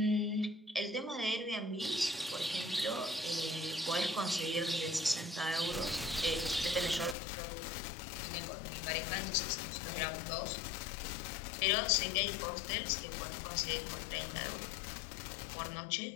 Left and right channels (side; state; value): right; drops out; at 7.2 s